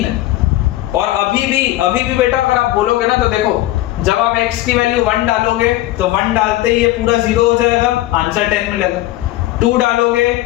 है। और अभी भी बेटा अगर आप बोलोगे ना तो देखो जब आप x की वैल्यू 1 डालोगे तो 1 डालते ही ये पूरा 0 हो जाएगा, आंसर 10 मिलेगा। 2 डालोगे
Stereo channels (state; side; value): quieter; right; 16.1 dB